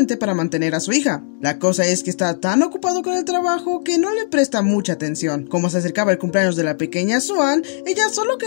para mantener a su hija. La cosa es que está tan ocupado con el trabajo que no le presta mucha atención. Como se acercaba el cumpleaños de la pequeña Swan, ella solo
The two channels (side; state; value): right; silent; 65 dB below the other